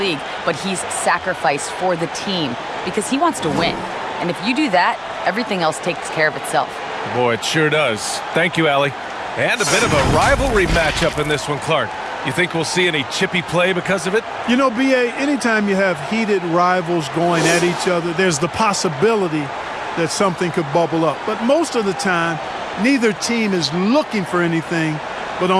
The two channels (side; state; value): both; identical; correlation 1.00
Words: but he's sacrificed for the team because he wants to win. And if you do that, everything else takes care of itself. Boy, it sure does. Thank you, Allie. And a bit of a rivalry matchup in this one, Clark. You think we'll see any chippy play because of it? You know, BA, anytime you have heated rivals going at each other, there's the possibility that something could bubble up. But most of the time, neither team is looking for anything. But